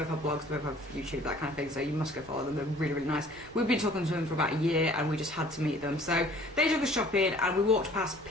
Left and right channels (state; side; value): noise; right; hum, 23 dB below the sound